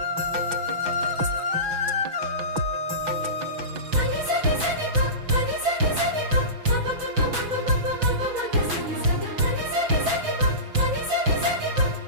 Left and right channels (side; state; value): left; late; 6.1 ms